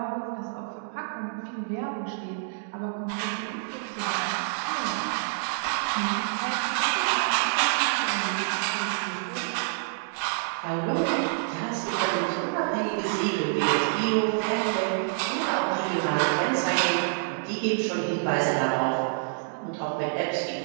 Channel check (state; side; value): silent; left; digital silence